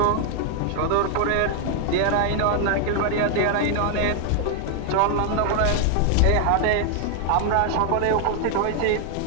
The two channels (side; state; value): both; different; correlation 0.00